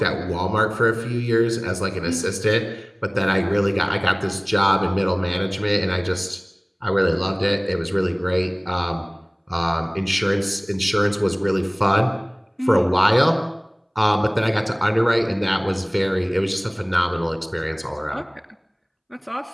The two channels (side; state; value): both; identical; correlation 1.00